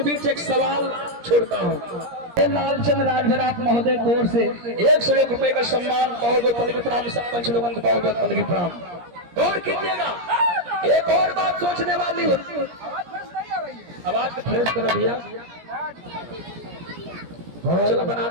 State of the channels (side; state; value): left; late; 17 ms